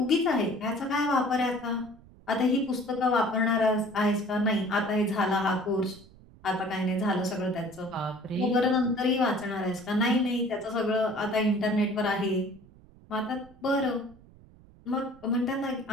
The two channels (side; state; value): right; noise; rumble, 24 dB below the sound